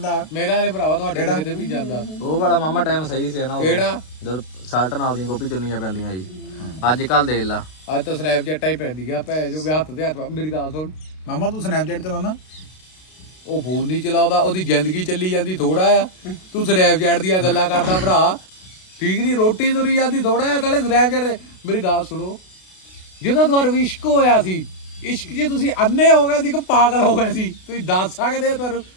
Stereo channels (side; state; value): right; late; 32 ms